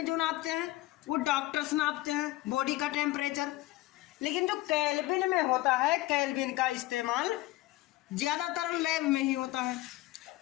जो नापते हैं वो डॉक्टर्स नापते हैं बॉडी का टेम्परेचर। लेकिन जो केल्विन में होता है, केल्विन का इस्तेमाल ज़्यादातर लैब में ही होता है,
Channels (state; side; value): quieter; right; 17.9 dB